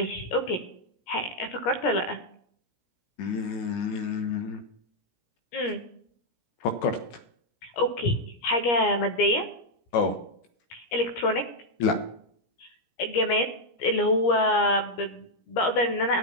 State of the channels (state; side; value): late; right; 17 ms